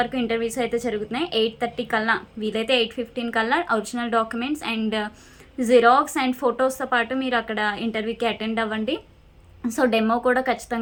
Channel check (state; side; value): identical; both; correlation 1.00